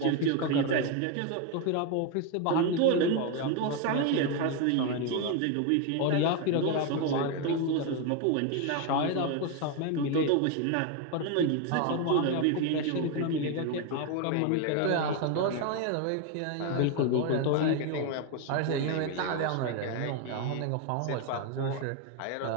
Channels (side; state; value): both; different; correlation 0.01